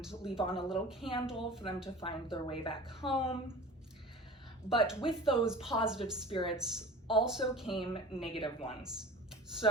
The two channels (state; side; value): normal; both; correlation 0.39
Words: leave on a little candle for them to find their way back home. But with those positive spirits also came negative ones.